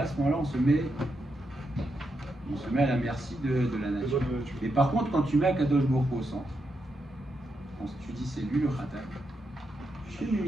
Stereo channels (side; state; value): both; normal; correlation 0.83